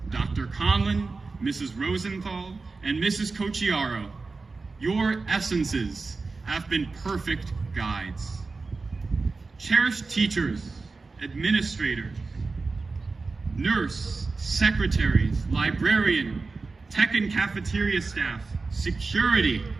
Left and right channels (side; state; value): left; quieter; 4.0 dB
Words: Dr. Conlon, Mrs. Rosenthal, and Mrs. Cocchiaro, your essences have been perfect guides. Cherished teachers, administrators, nurse, secretaries, librarian, tech and cafeteria staff, security,